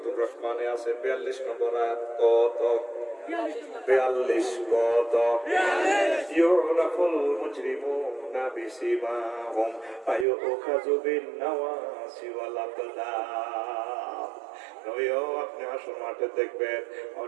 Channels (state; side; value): drops out; left; at 10.2 s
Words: রহমানে আছে 42 নম্বর আয়াত। কত 42 কত? ইউরাফুল মুজরিমুনা বিসিমাহুম ফায়ুখাযু বিন নাওয়াসি ওয়াল আকদাম। নয়ও আপনি হাসর মাঠে দেখবেন